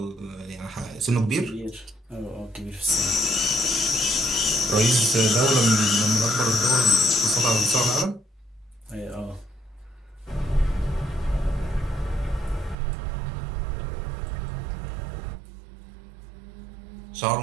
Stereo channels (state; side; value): drops out; left; at 12.8 s